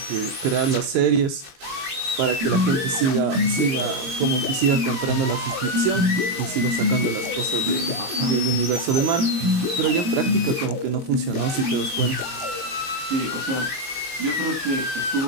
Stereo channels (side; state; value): left; late; 22 ms